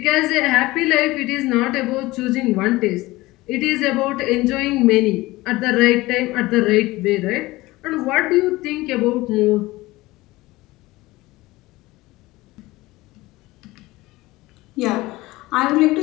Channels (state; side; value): quieter; right; 19.6 dB